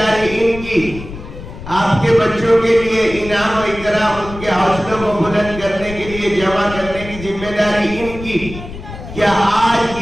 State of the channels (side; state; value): left; noise; rumble, 12 dB below the sound